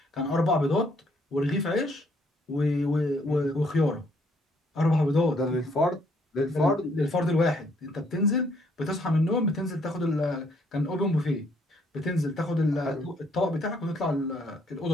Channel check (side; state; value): both; normal; correlation 0.67